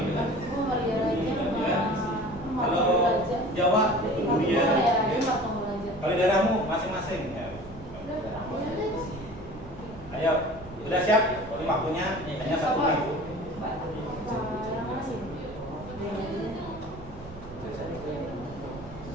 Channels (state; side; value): noise; right; rumble, 17 dB below the sound